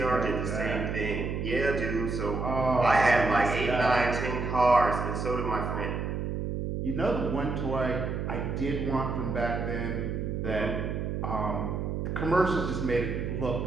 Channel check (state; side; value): noise; right; hum, 2 dB below the sound